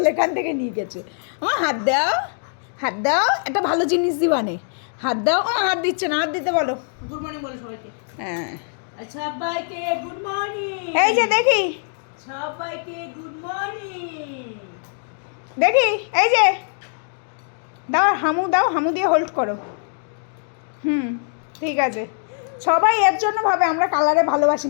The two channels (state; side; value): silent; right; digital silence